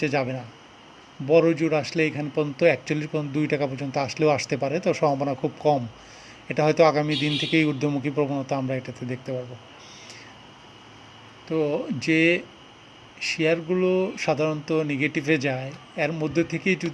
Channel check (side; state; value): both; identical; correlation 1.00